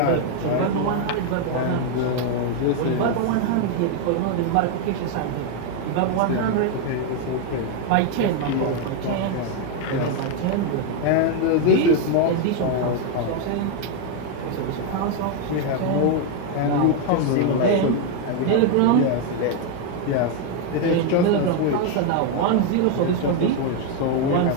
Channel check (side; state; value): both; different; correlation 0.01